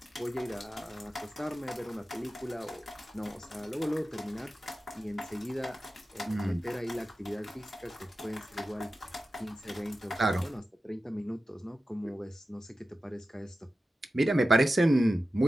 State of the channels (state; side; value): normal; both; correlation 0.93